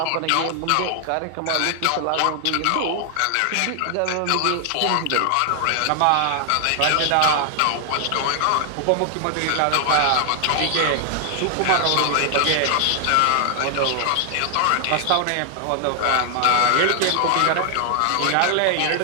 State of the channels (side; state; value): both; different; correlation 0.00